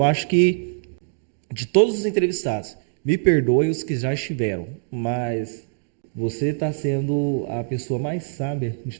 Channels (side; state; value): left; silent; digital silence